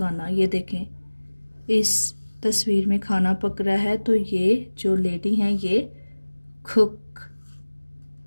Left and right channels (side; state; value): both; inverted; correlation -1.00